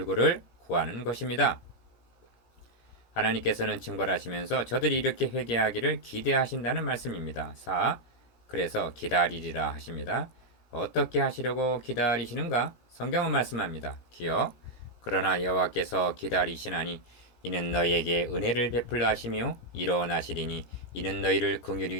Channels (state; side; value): late; right; 17 ms